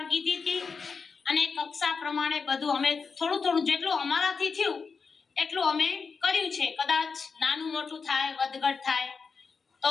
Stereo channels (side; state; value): right; quieter; 5.1 dB